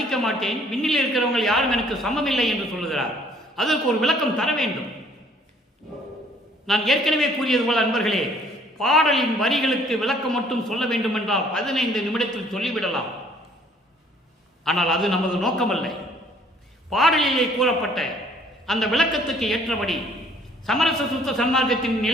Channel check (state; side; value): normal; both; correlation 0.60